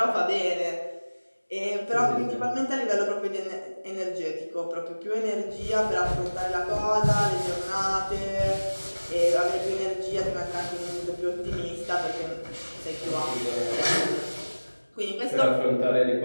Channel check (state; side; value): inverted; both; correlation -1.00